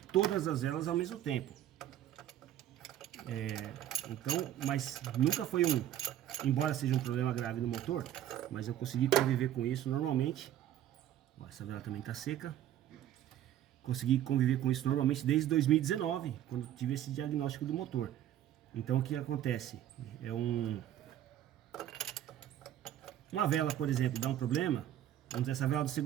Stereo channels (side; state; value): left; quieter; 11.8 dB